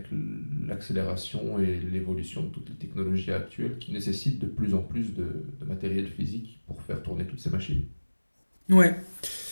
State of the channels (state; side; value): inverted; both; correlation -1.00